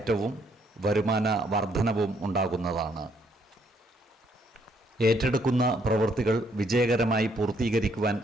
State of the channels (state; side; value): normal; both; correlation 0.70